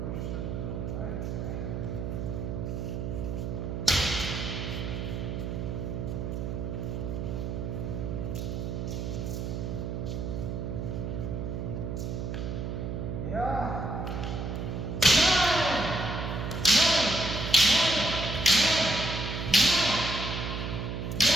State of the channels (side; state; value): right; noise; hum, 3 dB below the sound